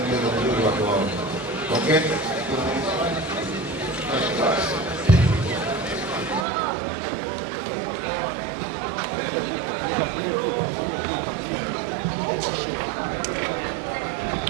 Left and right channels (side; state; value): left; drops out; at 6.5 s